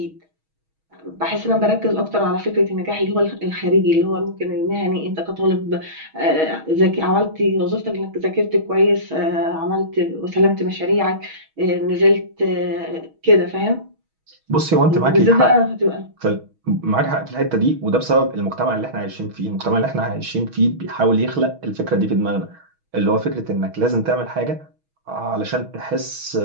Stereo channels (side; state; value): left; late; 6.3 ms